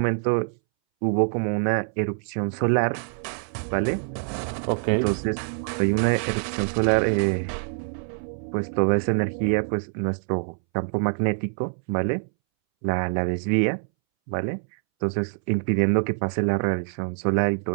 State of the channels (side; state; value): left; silent; 62 dB below the other